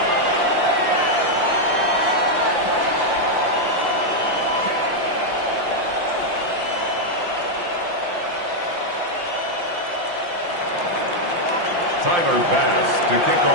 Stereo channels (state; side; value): late; left; 5.7 ms